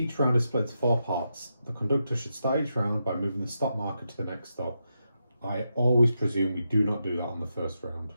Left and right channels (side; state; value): both; inverted; correlation -0.85